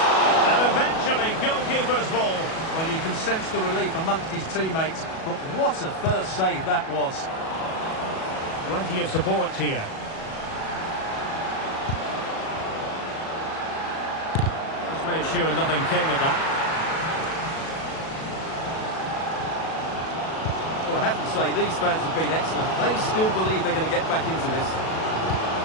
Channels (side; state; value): right; late; 37 ms